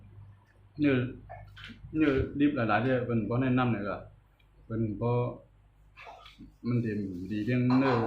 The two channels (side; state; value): both; identical; correlation 1.00